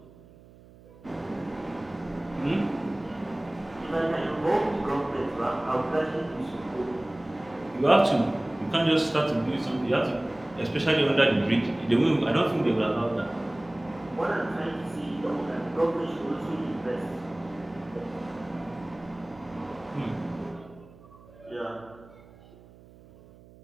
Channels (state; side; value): noise; right; hum, 23 dB below the sound